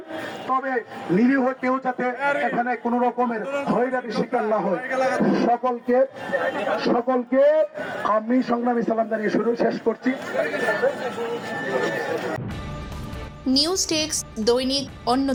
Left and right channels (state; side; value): identical; both; correlation 1.00